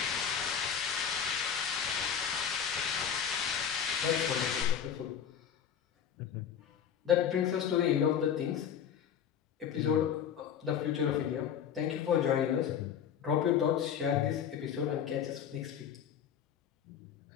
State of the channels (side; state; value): right; quieter; 8.4 dB